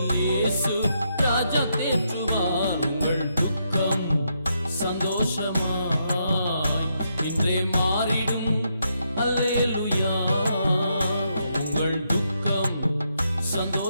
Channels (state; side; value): inverted; both; correlation -0.79